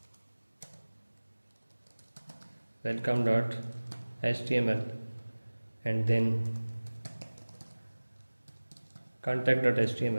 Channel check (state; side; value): inverted; both; correlation -1.00